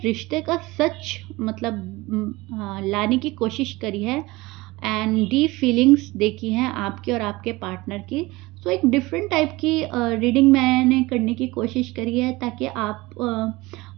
रिश्ते का सच मतलब लाने की कोशिश करी है, एंड डीप फीलिंग्स देखी हैं आपकी और आपके पार्टनर की। सो एक डिफरेंट टाइप की रीडिंग मैंने करने की कोशिश करी है, ताकि आप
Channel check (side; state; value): left; quieter; 21.2 dB